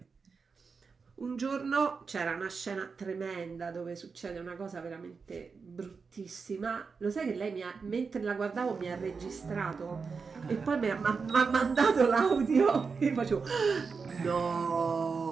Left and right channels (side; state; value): left; quieter; 5.1 dB